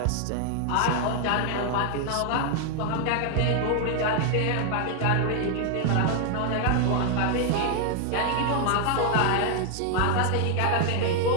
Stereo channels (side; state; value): both; different; correlation 0.00